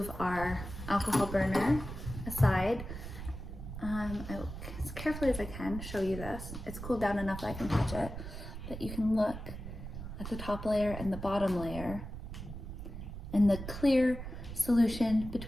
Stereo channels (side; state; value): right; noise; rumble, 9 dB below the sound